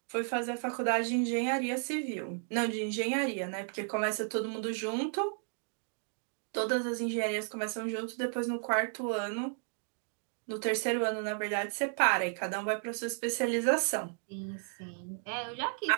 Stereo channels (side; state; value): left; silent; 55 dB below the other